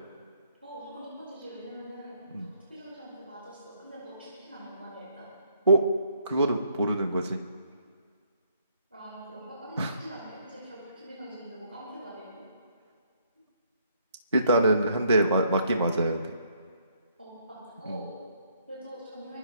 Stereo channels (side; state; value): both; inverted; correlation -0.68